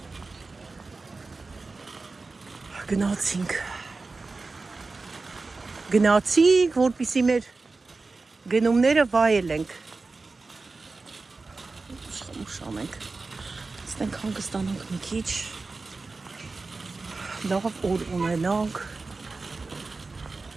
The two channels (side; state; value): left; quieter; 3.8 dB